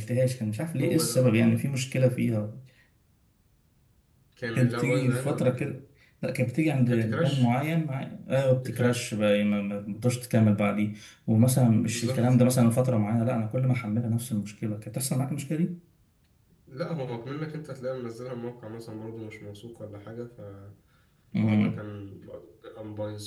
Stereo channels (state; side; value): identical; both; correlation 1.00